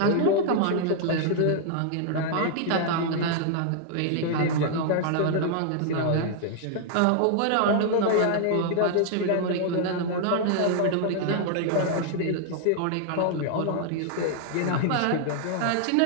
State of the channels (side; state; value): both; different; correlation -0.01